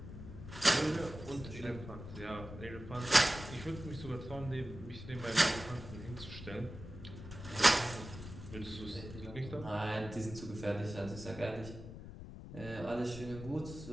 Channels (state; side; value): noise; left; rumble, 11 dB below the sound